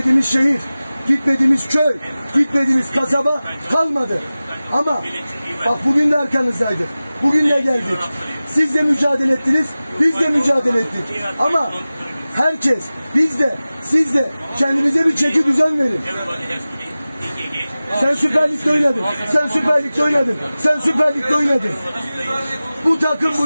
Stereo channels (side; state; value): both; inverted; correlation -0.97